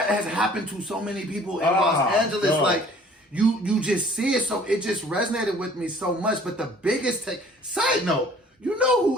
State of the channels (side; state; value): both; normal; correlation 0.53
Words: has happened to so many people in Los Angeles. God. Like, you just see it, so it just resonated with me so much. But the biggest side note, you know